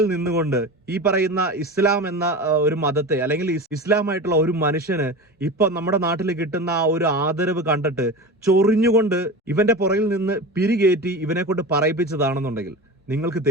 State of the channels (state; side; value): normal; both; correlation 0.28